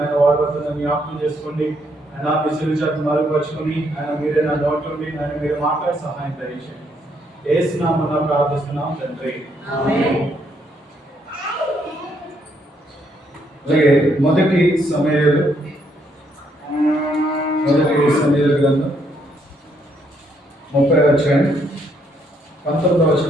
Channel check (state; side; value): normal; both; correlation 0.72